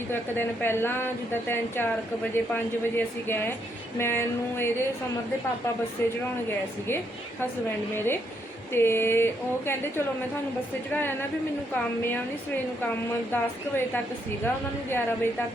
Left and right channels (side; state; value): both; normal; correlation 0.75